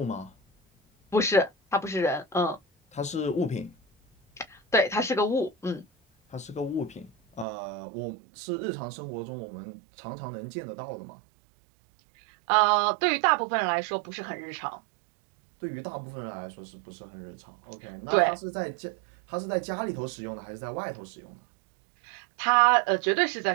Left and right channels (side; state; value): left; drops out; at 7.5 s